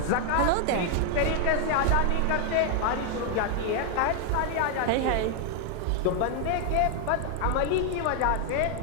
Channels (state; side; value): different; both; correlation 0.00